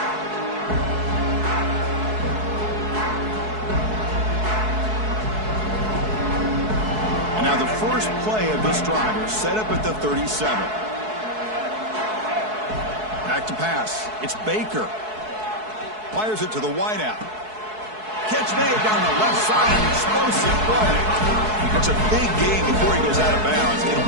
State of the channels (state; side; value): late; left; 4.7 ms